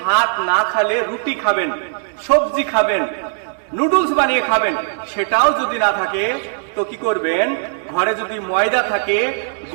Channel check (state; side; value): silent; left; digital silence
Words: না খেলে রুটি খাবেন, সবজি খাবেন, নুডলস বানিয়ে খাবেন। সেটাও যদি না থাকে তো কি করবেন, ঘরে যদি ময়দা থাকে